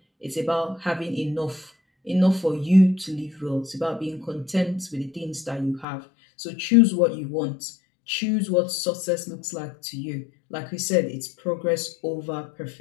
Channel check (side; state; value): right; drops out; at 5.9 s